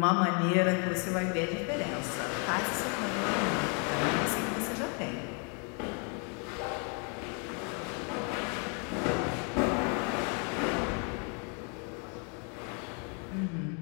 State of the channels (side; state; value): right; quieter; 36.6 dB